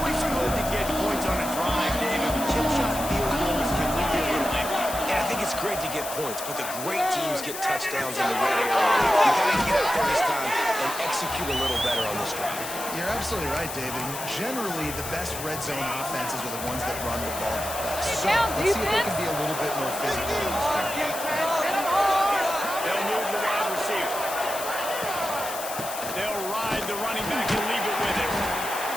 good to get points on a drive, David. Chip shot field goals can leave you a little empty. Yeah, I think it's great to get points, but the great teams get touchdowns in the red area. You got to get out there this time and execute a little better on this drive. You're absolutely right, David. Generally, the best red zone offenses are the ones that run the ball the best. So let's see if they can be a little bit more physical in this game. They'll move the wide receiver. They'll ride the running back and leave it with him.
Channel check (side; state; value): left; noise; hiss, 8 dB below the sound